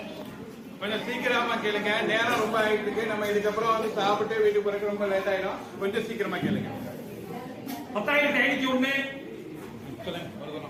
கொஞ்சம் சீக்கிரமா கேளுங்க, நேரம் ரொம்ப ஆயிட்டு இருக்கு. நம்ம இதுக்கப்புறம் வந்து சாப்பிட்டு வீட்டுக்கு போறதுக்கு ரொம்ப லேட் ஆயிடும். கொஞ்சம் சீக்கிரமா கேளுங்க. 10,501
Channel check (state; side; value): identical; both; correlation 1.00